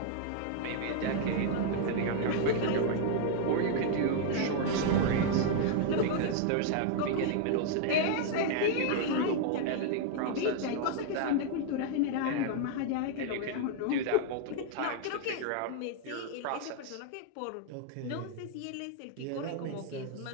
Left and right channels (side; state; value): both; different; correlation 0.00